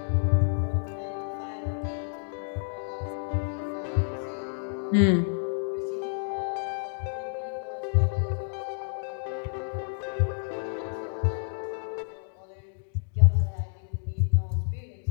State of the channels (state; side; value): silent; right; digital silence